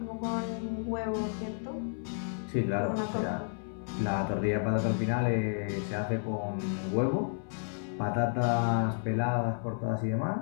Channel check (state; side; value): silent; right; 57 dB below the other